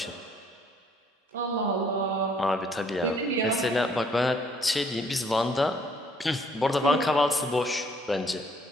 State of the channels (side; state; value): both; normal; correlation 0.64